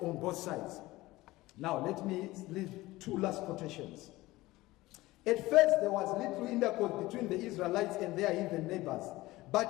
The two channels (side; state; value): right; quieter; 18.8 dB